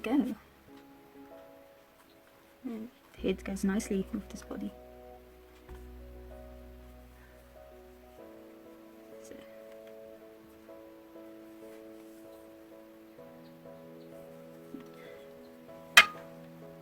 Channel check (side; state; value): both; identical; correlation 1.00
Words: And the head goes nicely with this body. So.